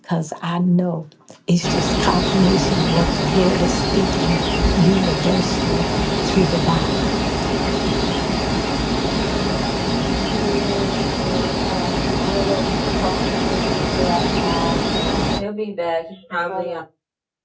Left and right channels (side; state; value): both; identical; correlation 1.00